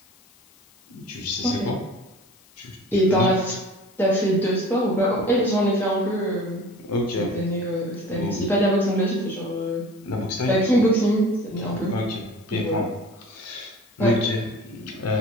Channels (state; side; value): noise; left; hiss, 29 dB below the sound